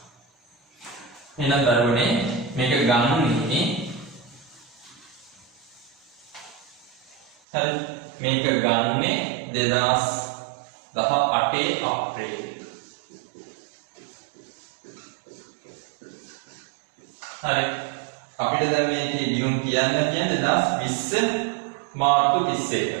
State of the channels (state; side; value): drops out; left; at 7.4 s